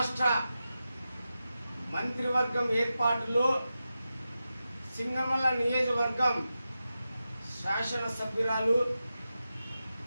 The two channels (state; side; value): inverted; both; correlation -0.91